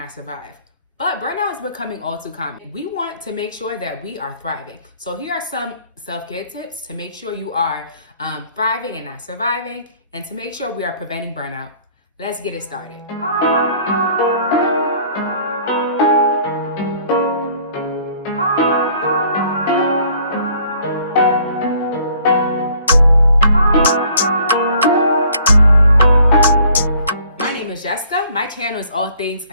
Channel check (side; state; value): both; inverted; correlation -0.57